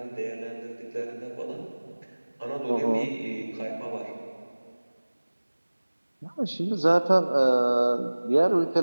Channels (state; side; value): inverted; both; correlation -1.00